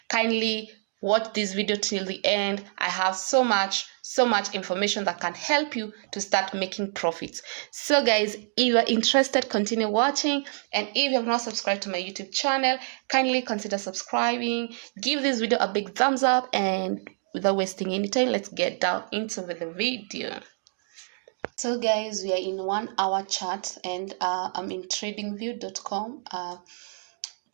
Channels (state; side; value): silent; left; 58 dB below the other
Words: kindly watch this video till the end. I have so much information that can help you to start making profits. So guys, if you are interested, continue watching, and if you have not subscribed to my YouTube channel, kindly consider subscribing. Give this video a big thumbs up, and without wasting any time, let's get down into the video. So guys, we are in 1 hour chart, and I'm in tradingview.com.